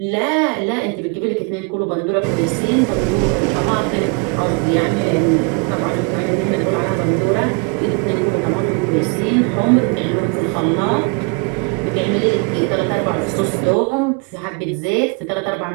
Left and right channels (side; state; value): left; quieter; 32.6 dB